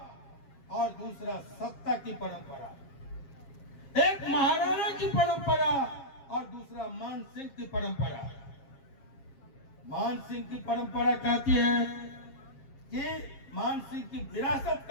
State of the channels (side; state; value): right; late; 7.4 ms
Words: और दूसरा सत्ता की परंपरा, एक महाराणा की परंपरा और दूसरा मान सिंह की परंपरा। मान सिंह की परंपरा कहती है कि मान सिंह की विरासत